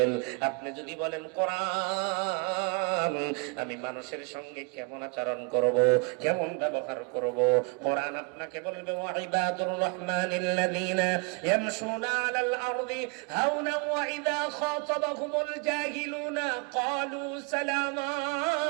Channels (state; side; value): quieter; left; 31.4 dB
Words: আপনি যদি বলেন কোরআন, আমি মানুষের সঙ্গে কেমন আচরণ করব, কেমন ব্যবহার করব, কোরআন আপনাকে বলবে ওয়াইবাদুর রহমানিল্লাযীনা ইয়ামশুনা আলাল আরদি হাওনা وإذا خاطبهم الجاهلون قالوا سلاما।